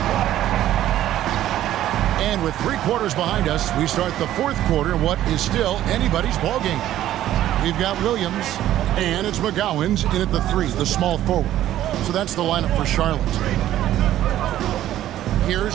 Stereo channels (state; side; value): quieter; left; 12.9 dB